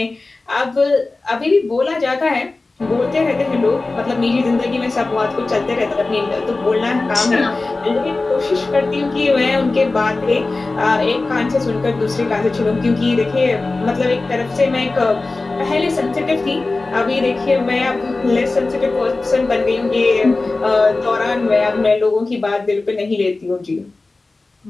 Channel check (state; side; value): quieter; right; 3.4 dB